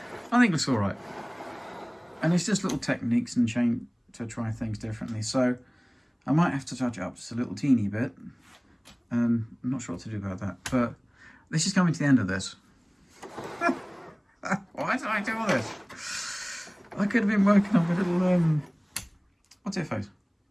think it's all right. And it's just little techniques and change to try things differently. So I might have to touch it up just a little teeny bit. I'm not sure what to do about that, but this is coming to the end of this. Why did I do all this? I could have been working on a little, what's it face?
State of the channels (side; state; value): both; identical; correlation 1.00